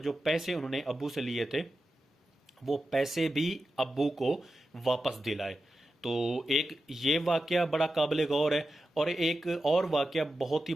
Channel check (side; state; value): both; normal; correlation 0.91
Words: पैसे उन्होंने अब्बू से लिए थे वो पैसे भी अब्बू को वापस दिलाए। तो एक ये वाक़या बड़ा काबिल गौर है। और एक और वाक़या बहुत ही